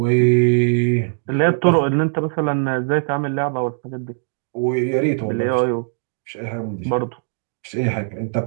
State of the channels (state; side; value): silent; left; digital silence